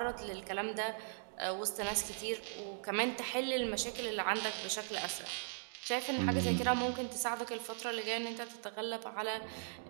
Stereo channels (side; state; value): left; silent; digital silence